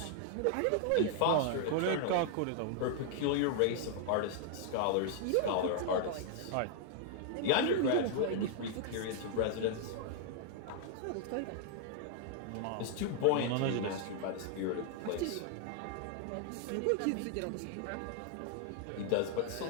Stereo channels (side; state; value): both; different; correlation 0.00